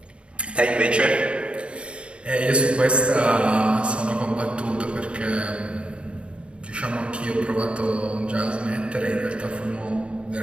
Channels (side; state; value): left; late; 0.057 ms